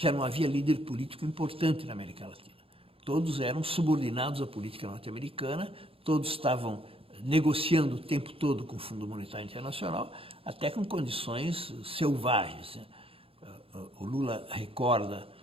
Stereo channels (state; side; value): late; left; 0.27 ms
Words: não havia líder político importante na América Latina. Todos eram subordinados à política norte-americana, todos estavam negociando o tempo todo com o Fundo Monetário Internacional, até com condições selvagens. O Lula recorda